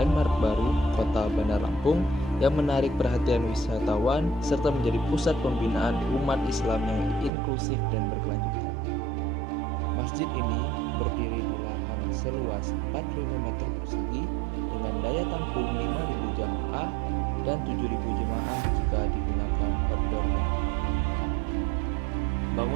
baru kota Bandar Lampung yang menarik perhatian wisatawan serta menjadi pusat pembinaan umat Islam yang inklusif dan berkelanjutan. Masjid ini berdiri di lahan seluas 4.000 meter persegi dengan daya tampung 5.000 jamaah dan 7.000 jemaah jika digunakan outdoor-nya.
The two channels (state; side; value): drops out; left; at 7.3 s